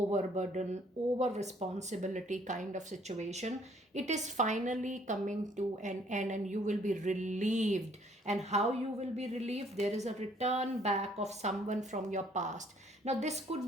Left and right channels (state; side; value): normal; both; correlation 0.62